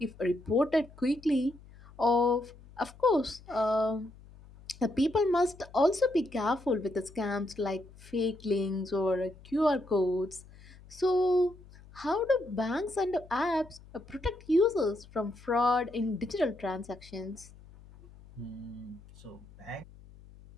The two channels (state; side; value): noise; left; hum, 21 dB below the sound